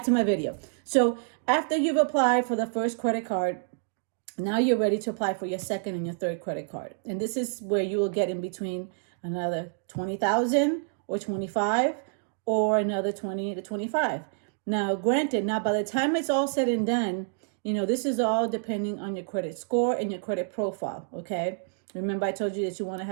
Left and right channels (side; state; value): left; silent; digital silence